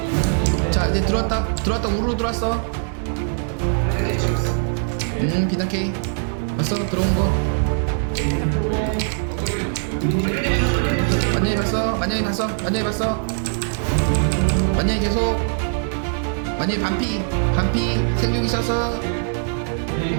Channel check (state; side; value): silent; left; digital silence